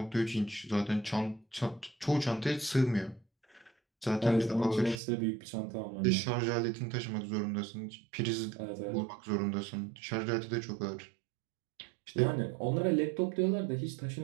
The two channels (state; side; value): drops out; left; at 5.0 s